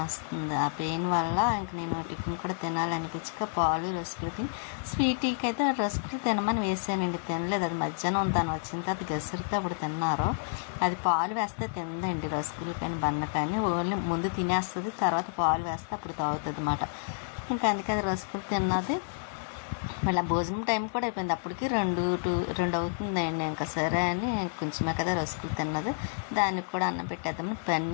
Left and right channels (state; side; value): silent; right; digital silence